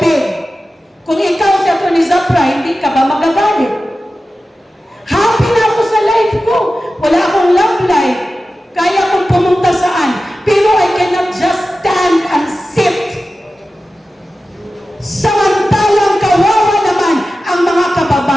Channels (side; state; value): both; normal; correlation 0.94